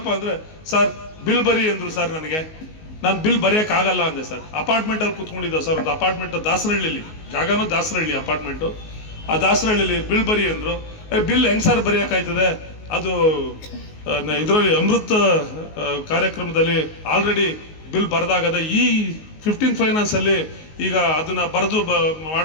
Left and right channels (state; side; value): late; right; 19 ms